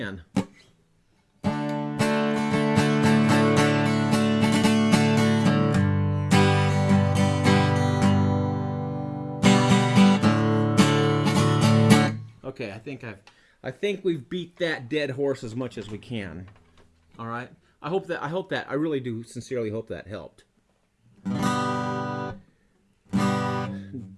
Okay, I think we've beat that dead horse as much as we can. All right. I really do sincerely hope that helped. So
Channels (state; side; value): identical; both; correlation 1.00